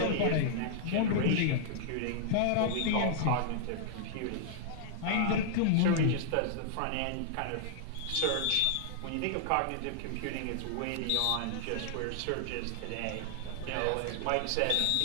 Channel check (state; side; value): different; both; correlation -0.01